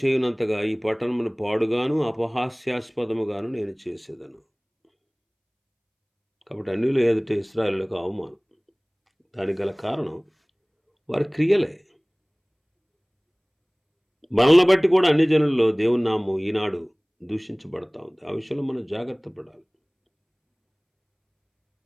చేయనంతగా ఈ పట్టణమును పాడుగాను అపహాస్యాస్పదముగాను నేను చేసేదను. కాబట్టి అన్యులు ఎదుట ఇశ్రాయేలులకు అవమానం. దానికి గల కారణం వారి క్రియలే. మనల్ని బట్టి కూడా అన్ని జనుల్లో దేవుని నామం ఈనాడు దూషించబడతా ఉంది. ఆ విషయంలో మనం జాగ్రత్త పడాలి.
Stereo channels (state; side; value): identical; both; correlation 1.00